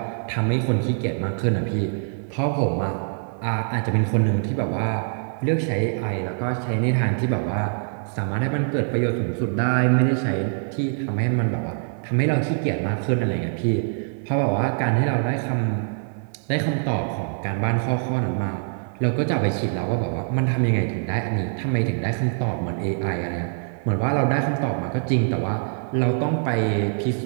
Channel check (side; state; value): left; silent; 63 dB below the other